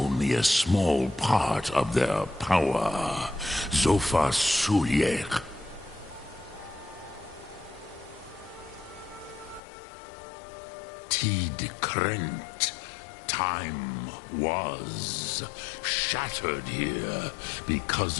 a small part of their power. Zofa Sulyek. Tid Krent. Time was shattered here because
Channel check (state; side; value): drops out; right; at 9.6 s